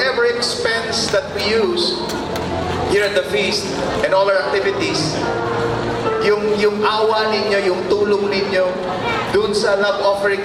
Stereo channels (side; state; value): both; identical; correlation 1.00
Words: expense that we use here at the feast and all our activities, yung awa ninyo, yung tulong ninyo, dun sa love offering